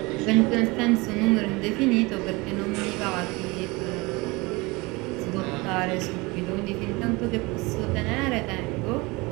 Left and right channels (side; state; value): left; quieter; 24.3 dB